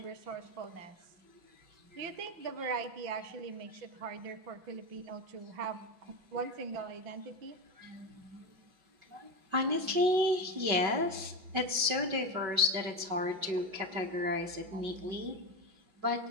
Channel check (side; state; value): left; late; 5.3 ms